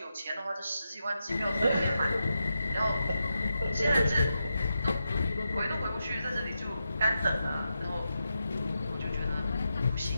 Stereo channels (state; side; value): inverted; both; correlation -0.87